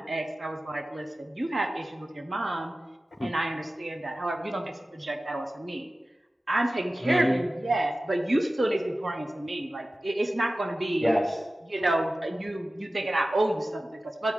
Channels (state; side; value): normal; both; correlation 0.96